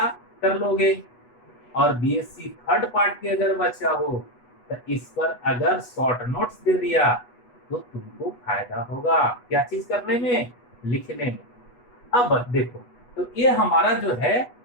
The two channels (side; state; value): right; late; 8.2 ms